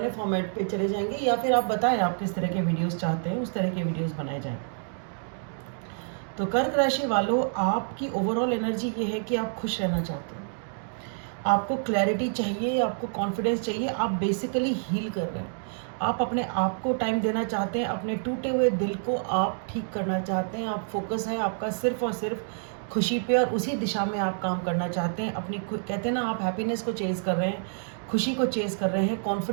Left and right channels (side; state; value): left; silent; digital silence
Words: फॉर्मेट पे चले जाएंगे, या फिर आप बताएं आप किस तरह के वीडियोस चाहते हैं, उस तरह के वीडियोस बनाए जाएं। तो कर्क राशि वालों, आपकी ओवरऑल एनर्जी ये है कि आप खुश रहना चाहते हैं, आपको क्लैरिटी चाहिए, आपको कॉन्फिडेंस चाहिए, आप बेसिकली हील कर रहे हैं। आप अपने आप को टाइम देना चाहते हैं, अपने टूटे हुए दिल को आप ठीक करना चाहते हैं। आप फोकस है आपका सिर्फ और सिर्फ खुशी पे, और उसी दिशा में आप काम करना चाहते हैं। अपनी कहते हैं ना, आप हैप्पीनेस को चेज़ कर रहे हैं, खुशी को चेज़ कर रहे हैं,